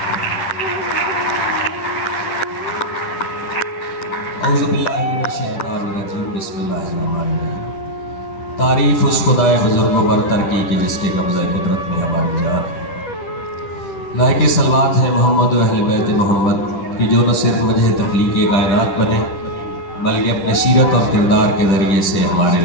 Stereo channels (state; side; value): late; right; 10 ms